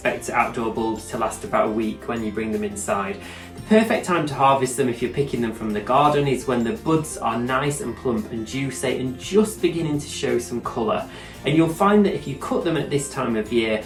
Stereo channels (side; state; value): both; identical; correlation 1.00